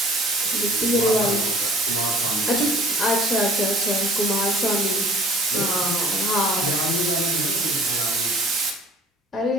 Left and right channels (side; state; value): both; normal; correlation 0.49